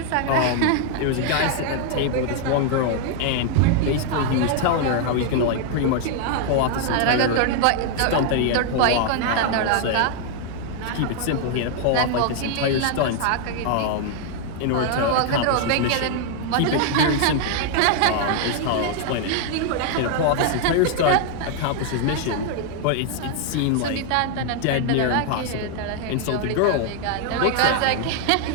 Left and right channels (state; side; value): different; both; correlation 0.00